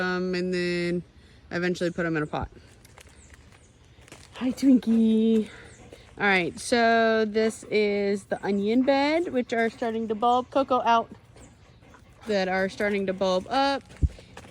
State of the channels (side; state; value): both; identical; correlation 1.00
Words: and then eventually put them in a pot. Hi, Twinkie. All right, so this is the onion bed, which are starting to bulb. Coco out. That are starting to bulb up.